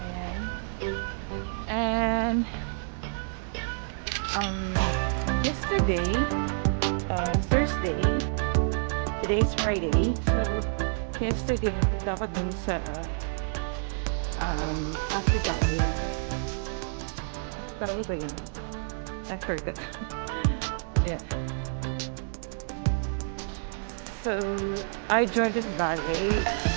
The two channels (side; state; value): left; silent; digital silence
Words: Ayan. And um, yesterday, Thursday, today is Friday. So yesterday, punta ako dun sa Abu Dhabi. Tawag ba yun? I forgot. Yeah. So I Jordan Valley.